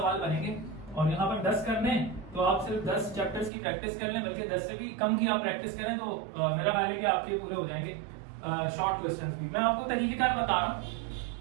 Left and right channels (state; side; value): drops out; left; at 3.5 s